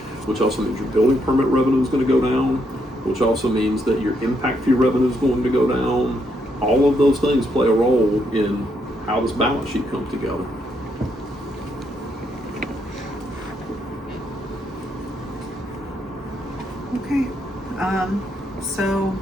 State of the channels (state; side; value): normal; both; correlation 0.76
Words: Which also means your building permit revenue is going to go down, which also means that your impact fee revenue is going to go down. All of those things play a role in how this balance sheet comes together. Okay, so